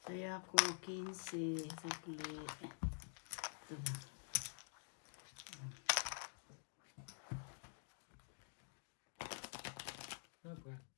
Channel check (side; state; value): right; silent; digital silence